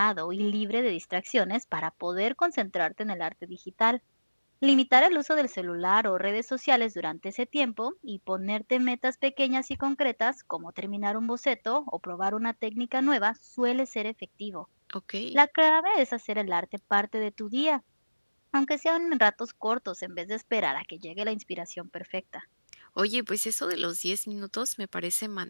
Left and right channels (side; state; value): both; inverted; correlation -1.00